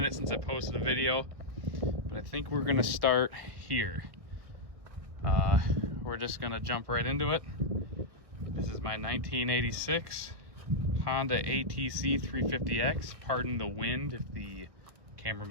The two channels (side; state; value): left; late; 1.6 ms